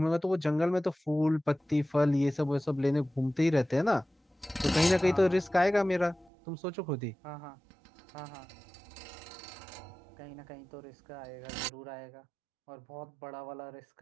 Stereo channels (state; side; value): drops out; left; at 6.3 s